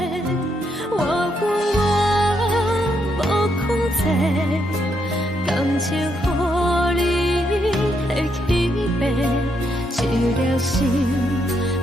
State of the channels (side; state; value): both; normal; correlation 0.77